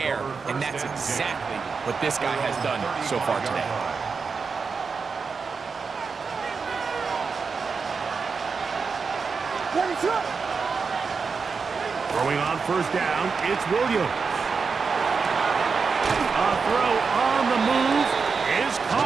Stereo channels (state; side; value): quieter; left; 5.1 dB